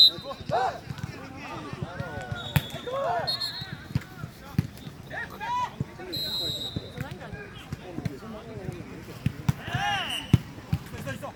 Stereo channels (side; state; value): both; identical; correlation 1.00